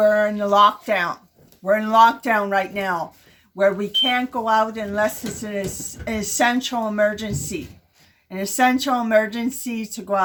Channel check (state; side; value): identical; both; correlation 1.00